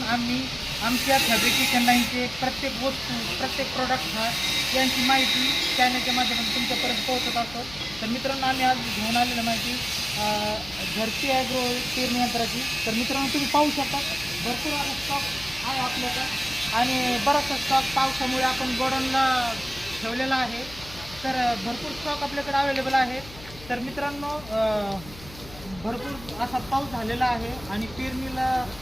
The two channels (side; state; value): left; noise; hum, 17 dB below the sound